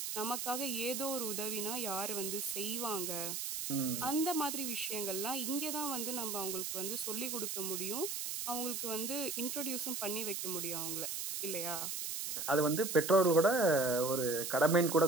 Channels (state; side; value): noise; right; hiss, 3 dB below the sound